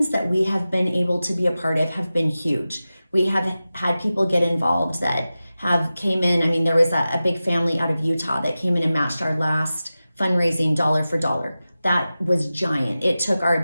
that we have been able to be a part of have been huge. We have had people get involved that have came in. I mean, there was a big family out of Utah that came in and matched our last fundraising dollar for dollar. That was giant. It took our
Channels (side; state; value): both; inverted; correlation -0.95